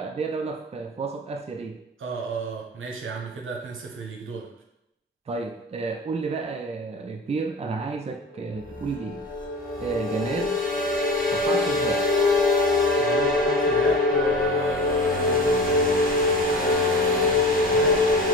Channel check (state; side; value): normal; both; correlation 0.34